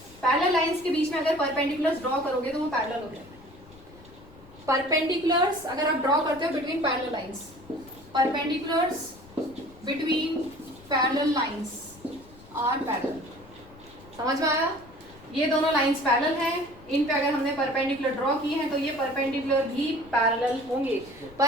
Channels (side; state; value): left; noise; rumble, 22 dB below the sound